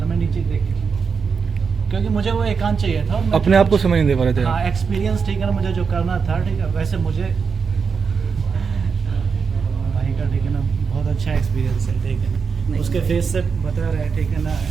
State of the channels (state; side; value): quieter; left; 5.7 dB